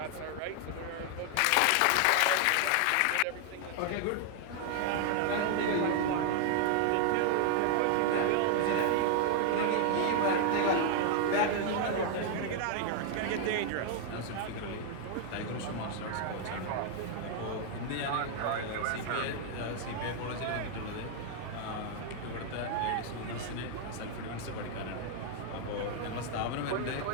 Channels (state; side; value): different; both; correlation 0.00